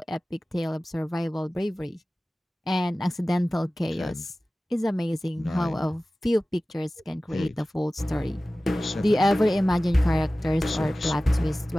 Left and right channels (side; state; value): both; normal; correlation 0.97